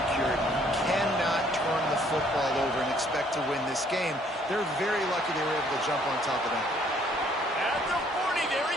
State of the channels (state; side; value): normal; both; correlation 0.63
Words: You cannot turn the football over and expect to win this game. They're very lucky they were able to jump on top of that. At the 40, there